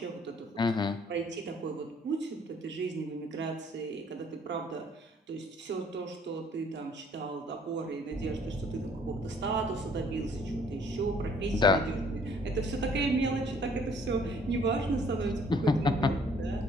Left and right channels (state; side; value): normal; both; correlation 0.60